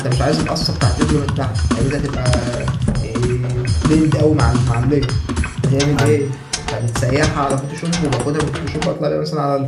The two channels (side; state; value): both; identical; correlation 1.00